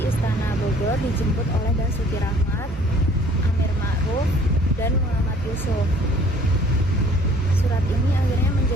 Istana Bogor, dijemput oleh Basuki Rahmat, Amir Ma'ruf, dan Muhammad Yusuf. Surat ini akhirnya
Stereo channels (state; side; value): normal; both; correlation 0.55